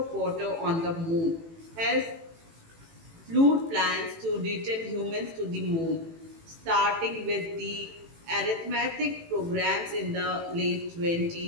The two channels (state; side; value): late; left; 18 ms